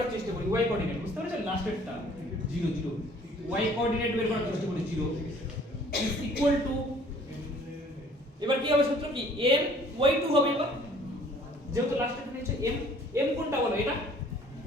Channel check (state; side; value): normal; both; correlation 0.55